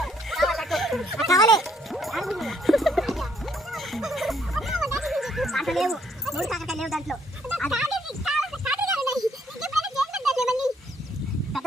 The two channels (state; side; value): normal; both; correlation 0.68